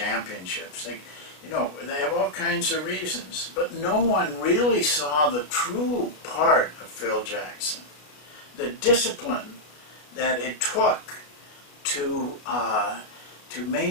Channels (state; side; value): late; right; 33 ms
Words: They have all kinds of reasons, but no one really saw the true part of Phil Jackson, the discipline that it took to